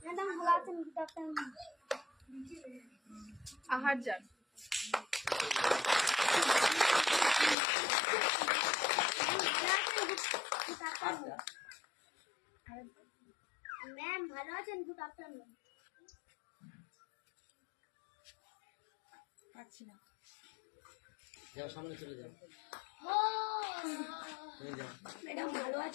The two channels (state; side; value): drops out; right; at 7.6 s